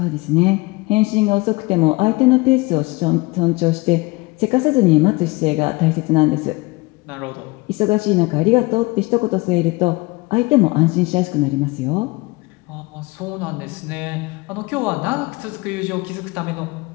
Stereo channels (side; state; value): right; quieter; 23.6 dB